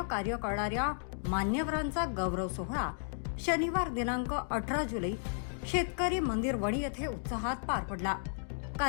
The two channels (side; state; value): right; silent; digital silence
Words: कार्य करणाऱ्या मान्यवरांचा गौरव सोहळा शनिवार दिनांक 18 जुलै शेतकरी मंदिर वणी येथे उत्साहात पार पडला।